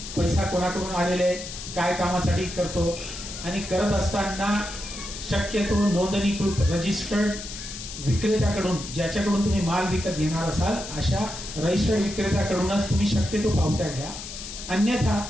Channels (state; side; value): noise; left; hiss, 10 dB below the sound